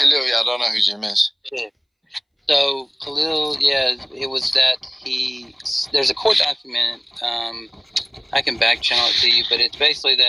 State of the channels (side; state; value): both; identical; correlation 1.00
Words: I don't know who Jim is. So Khalil, it was that there's a court document, I can back channel it to you, but it's basically